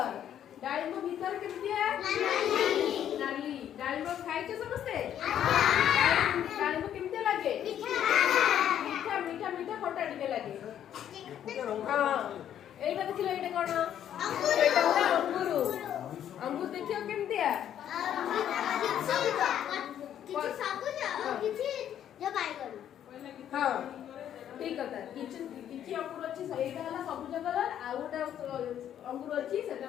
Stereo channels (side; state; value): right; quieter; 10.3 dB